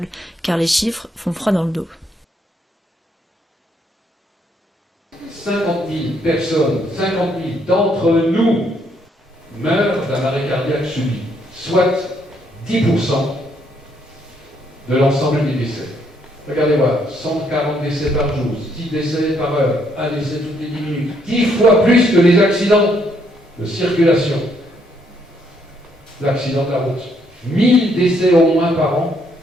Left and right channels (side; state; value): both; normal; correlation 0.71